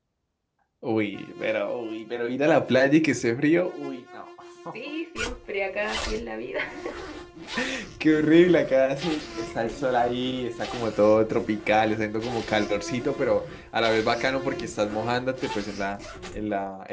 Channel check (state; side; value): identical; both; correlation 1.00